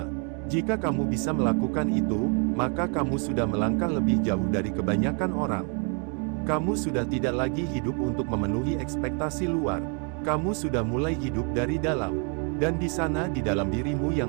Jika kamu bisa melakukan itu, maka kamu sudah melangkah lebih jauh dari kebanyakan orang. Kamu sudah tidak lagi hidup untuk memenuhi ekspektasi luar. Kamu sudah mulai hidup dari dalam. Dan di sana di dalam dirimu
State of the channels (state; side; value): quieter; left; 37.7 dB